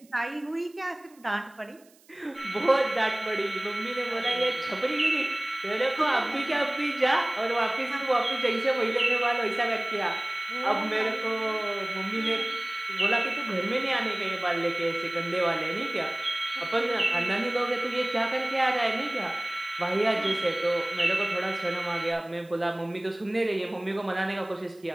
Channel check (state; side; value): noise; right; hiss, 29 dB below the sound